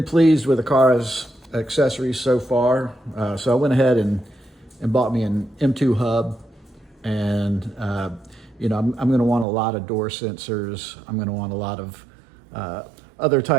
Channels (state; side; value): drops out; left; at 9.5 s